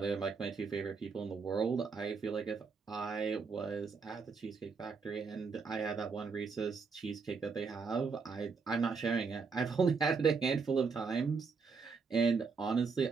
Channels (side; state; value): left; quieter; 5.0 dB